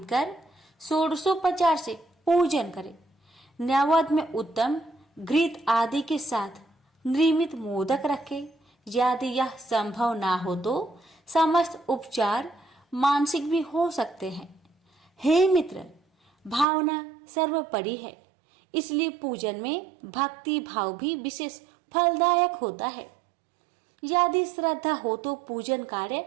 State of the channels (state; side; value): drops out; left; at 16.7 s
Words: कर षोडशोपचार से पूजन करें। नैवेद्य में उत्तम घृत आदि के साथ निर्मित मोदक रखें। यदि यह संभव ना हो तो समस्त उपचार मानसिक भी हो सकते हैं। हे मित्र, भावना सर्वोपरि है, इसलिए पूजन में भक्ति भाव भी विशेष फलदायक होता है। यदि श्रद्धा हो तो पूजन कार्य